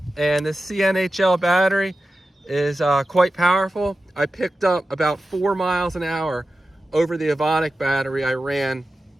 And this CNHL battery is quite powerful. I picked up about 4 miles an hour over the Evonik battery I ran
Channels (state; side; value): normal; both; correlation 0.93